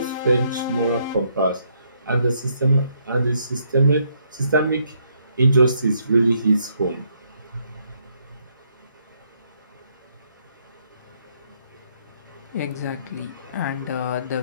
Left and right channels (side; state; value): both; inverted; correlation -0.72